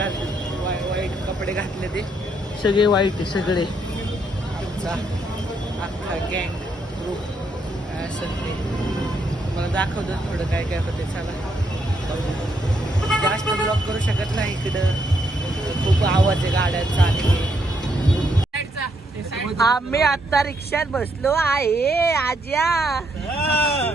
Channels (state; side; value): normal; both; correlation 0.75